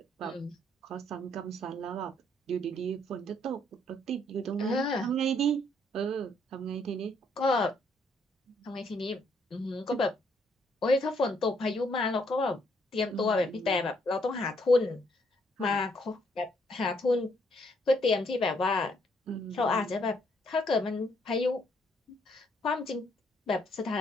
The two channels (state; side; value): normal; both; correlation 0.70